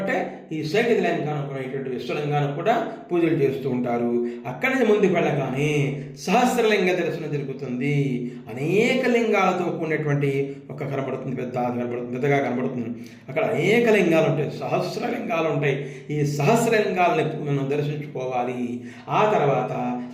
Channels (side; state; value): both; identical; correlation 1.00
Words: ఈ సైకతలింగానికి విశ్వలింగానికి కూడా పూజలు చేస్తూ ఉంటారు. అక్కడి నుంచి ముందుకు వెళ్ళగానే సహస్రలింగ దర్శనం జరుగుతుంది. అనేక లింగాలతో కూడినటువంటి ఒక కనబడుతుంది, పెద్దగా కనబడుతుంది. అక్కడ అనేక లింగాలు ఉంటాయి, సహస్రలింగాలు ఉంటాయి. ఈ సహస్రలింగాలని మనం దర్శించుకోవాలి. ఆ తర్వాత